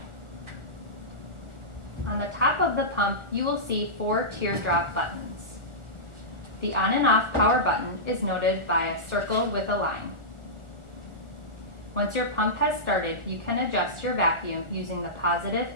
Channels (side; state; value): left; late; 1.4 ms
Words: On the top of the pump, you will see 4 teardrop buttons. The on and off power button is noted by a circle with a line. Once your pump has started, you can adjust your vacuum using the positive